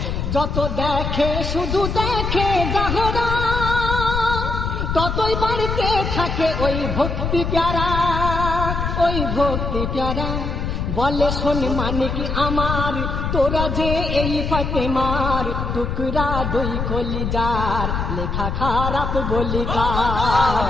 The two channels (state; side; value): noise; left; rumble, 2 dB below the sound